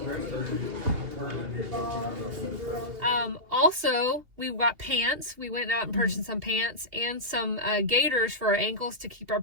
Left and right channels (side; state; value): left; late; 2.8 ms